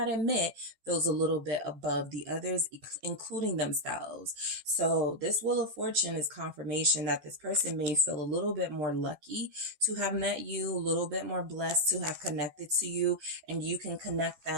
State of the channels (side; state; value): left; late; 14 ms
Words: admit feels a little bit above the others, including themselves. So this Wheel of Fortune is confirmation that this person may feel a little bit more lucky to have met you, a little bit more blessed to have connected to you, and you can connect